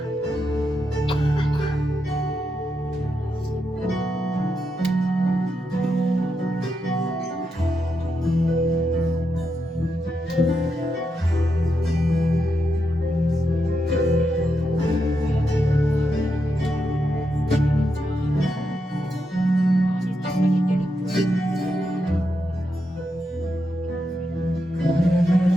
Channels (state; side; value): normal; both; correlation 0.84